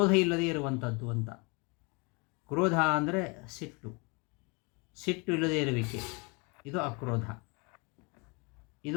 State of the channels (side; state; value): right; quieter; 30.4 dB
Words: ಇಲ್ಲದೇ ಇರುವಂಥದ್ದು ಅಂತ. ಕ್ರೋಧ ಅಂದರೆ ಸಿಟ್ಟು, ಸಿಟ್ಟು ಇಲ್ಲದೇ ಇರುವಿಕೆ, ಇದು ಅಕ್ರೋಧ.